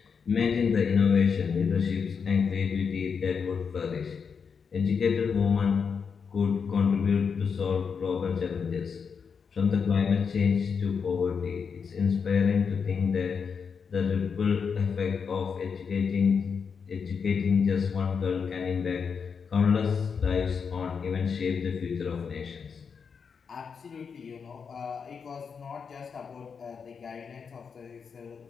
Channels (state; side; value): quieter; right; 6.1 dB